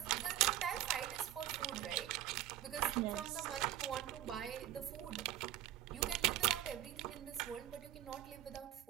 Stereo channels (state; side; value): quieter; left; 12.7 dB